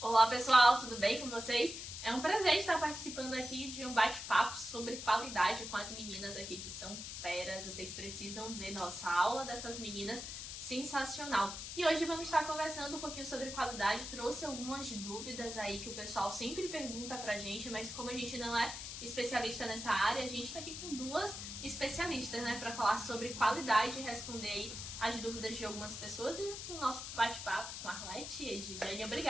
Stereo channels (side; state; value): left; noise; hiss, 7 dB below the sound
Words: Olá pessoal, tudo bem com vocês? É um prazer estar participando aqui de um bate-papo sobre qualidade com as meninas aqui que são feras. Vocês precisam ver nossa aula dessas meninas, sensacional. E hoje vamos estar conversando um pouquinho sobre qualidade. Trouxe algumas dúvidas aí que o pessoal sempre pergunta pra gente, mas como a gente não é especialista nessa área, a gente tá aqui com duas especialistas, né, para falar sobre qualidade e responder aí as dúvidas de algumas pessoas e o nosso bate-papo com a Arlete e Edjane.